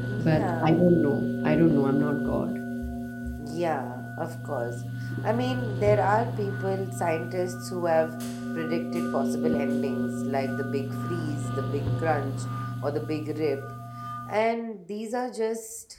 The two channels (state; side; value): identical; both; correlation 1.00